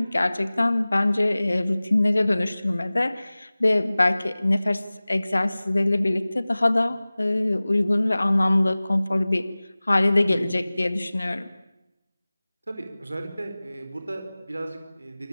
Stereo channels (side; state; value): both; inverted; correlation -0.99